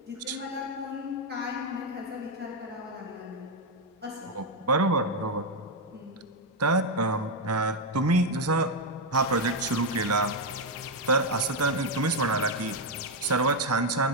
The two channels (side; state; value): both; normal; correlation 0.03